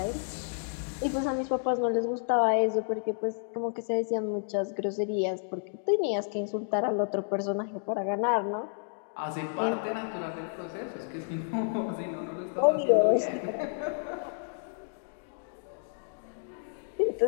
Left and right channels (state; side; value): silent; right; digital silence